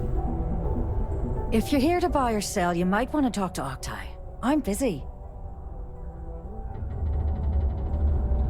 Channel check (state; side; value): identical; both; correlation 1.00